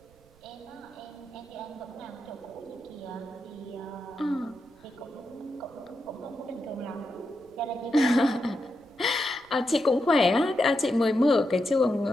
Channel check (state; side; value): noise; right; rumble, 29 dB below the sound